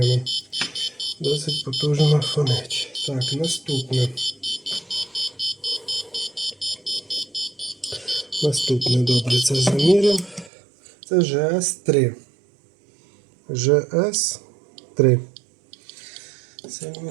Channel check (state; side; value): drops out; left; at 10.5 s